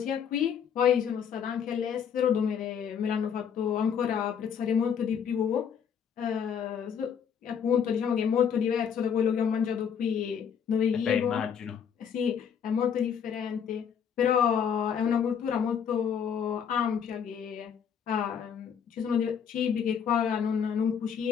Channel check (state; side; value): quieter; right; 7.7 dB